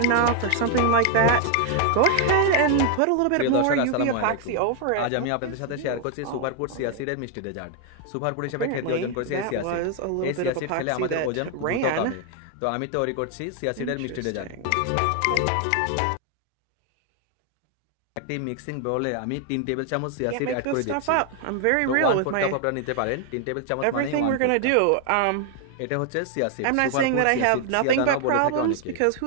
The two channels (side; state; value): both; different; correlation 0.00